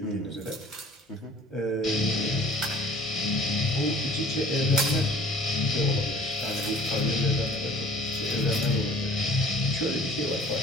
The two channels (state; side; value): normal; both; correlation 0.51